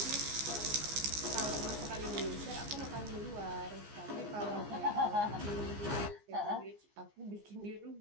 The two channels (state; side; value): late; left; 14 ms